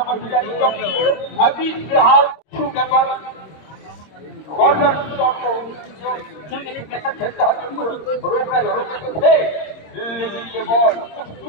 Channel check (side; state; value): right; late; 26 ms